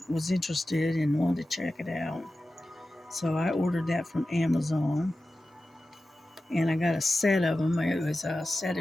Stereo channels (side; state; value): both; normal; correlation 0.94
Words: was interested and wanted to check it out. So I ordered that from Amazon, and I got a set of them. It was a set